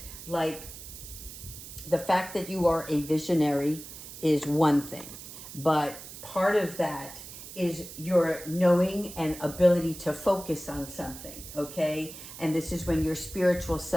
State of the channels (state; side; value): noise; right; hiss, 13 dB below the sound